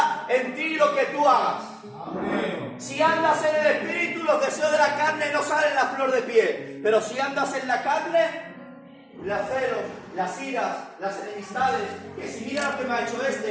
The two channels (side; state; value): both; identical; correlation 1.00